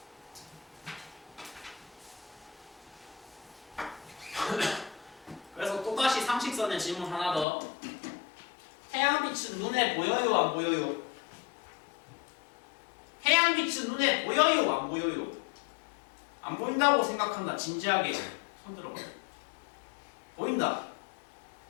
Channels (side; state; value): right; drops out; at 7.5 s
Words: 그래서 또다시 상식선의 질문 하나 더. 태양빛은 눈에 보여요? 안 보여요? 태양빛은 눈에 보여요? 안 보여요? 안 보인다고 생각한다. 진지하게 손 들어봐. 보인다.